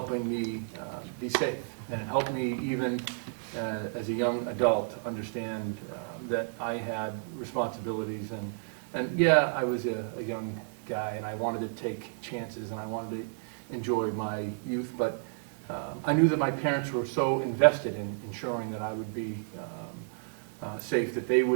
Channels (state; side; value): silent; left; 57 dB below the other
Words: me be safe, and it helped me even as a young adult understand that I had responsibilities, and yeah, I was a young guy and I wanted to take chances and I wanted to enjoy my youth, but I knew that my parents were so invested in ensuring that I would be safe that they